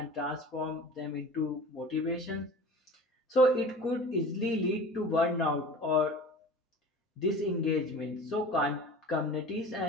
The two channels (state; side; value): normal; both; correlation 0.39